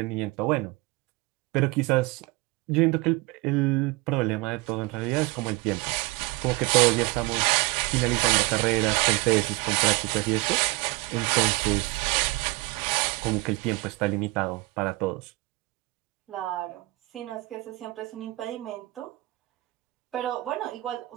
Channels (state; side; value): quieter; left; 22.2 dB